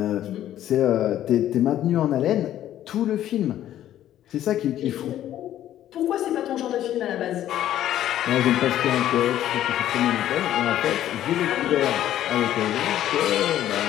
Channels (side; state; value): right; quieter; 12.2 dB